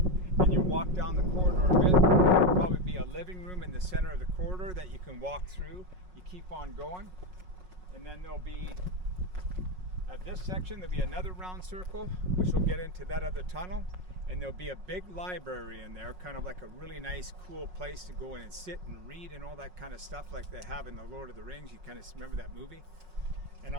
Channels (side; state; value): left; late; 5.5 ms